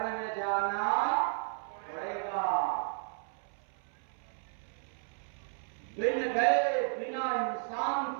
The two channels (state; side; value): silent; left; 55 dB below the other